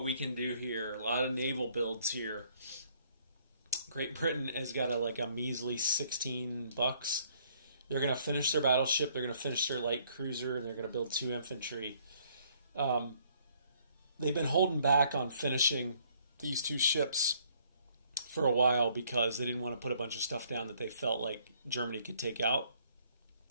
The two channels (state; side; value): inverted; both; correlation -0.63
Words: we can do here. A lot of naval builds here. Great Britain has got a measly $16. They're going to finish their battleship, they're going to finish their light cruiser, and they're going to build 2 infantry. They've been holding back on finishing these 2 ships for a while because they didn't want to put a bunch of stuff down that they felt like Germany could take out.